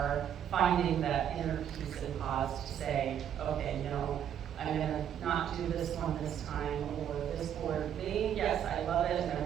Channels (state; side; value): quieter; left; 9.5 dB